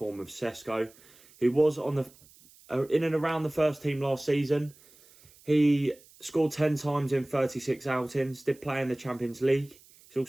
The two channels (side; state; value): right; noise; hiss, 26 dB below the sound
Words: of Sesko, who was on the in and around the first team last season. He scored 10 times in 36 outings, did play in the Champions League. He's